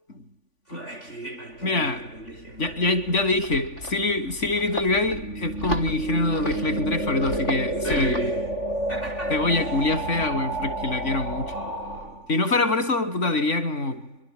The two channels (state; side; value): late; right; 3.5 ms